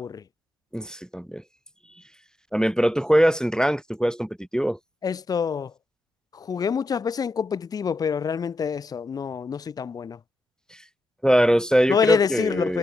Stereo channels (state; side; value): normal; both; correlation 0.87